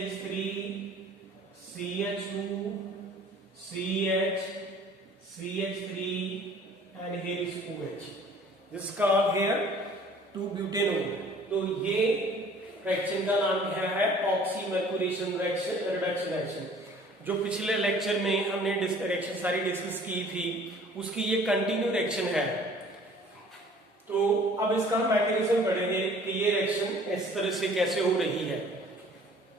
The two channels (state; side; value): normal; both; correlation 0.52